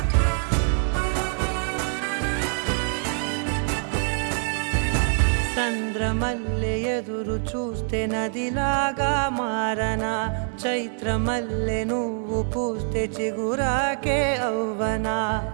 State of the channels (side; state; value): left; silent; digital silence